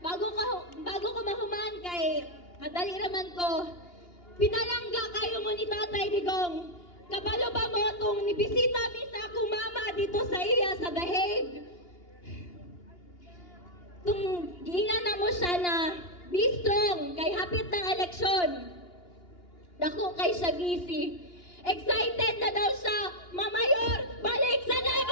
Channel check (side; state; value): right; late; 2.8 ms